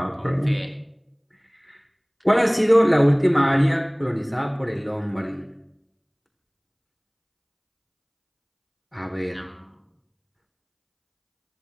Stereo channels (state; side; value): identical; both; correlation 1.00